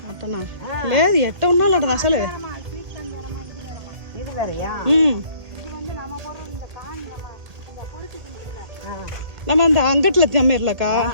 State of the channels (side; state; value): left; late; 1.7 ms